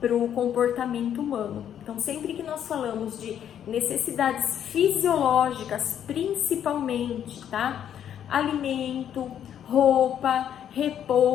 para o comportamento humano. Então sempre que nós falamos de necessidades fisiológicas, principalmente, tá? Alimento, roupa,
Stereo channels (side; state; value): right; quieter; 9.6 dB